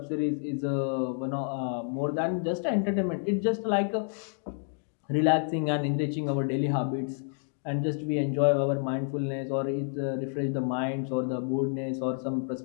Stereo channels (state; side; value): silent; right; 58 dB below the other